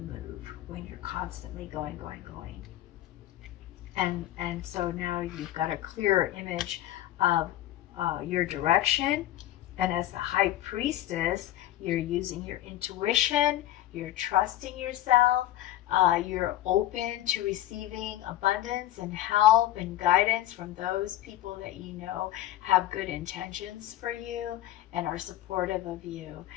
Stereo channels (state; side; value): quieter; right; 13.9 dB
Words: move, when you're constantly going. And so now you've got a clearer image of your direction. And as the High Priestess, you're using your intuition, you're trusting yourself, you're open to receiving abundance and help and guidance from those people that you know have good intentions for you and are supportive of you.